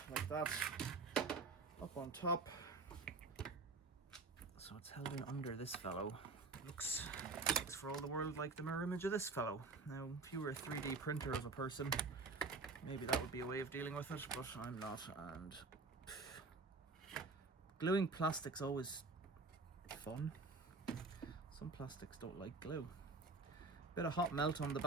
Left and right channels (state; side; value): quieter; left; 3.9 dB